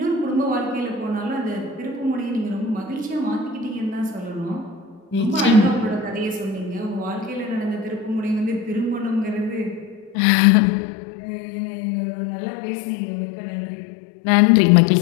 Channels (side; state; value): right; drops out; at 10.2 s